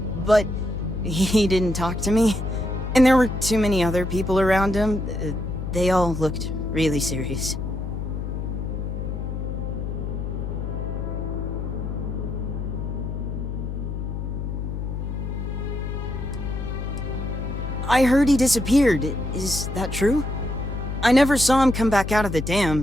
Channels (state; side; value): noise; left; hum, 4 dB below the sound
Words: but he didn't talk to me. And there were too many other people around him. They all looked really serious. I heard he disappeared. Is that true? I never saw him come back out of the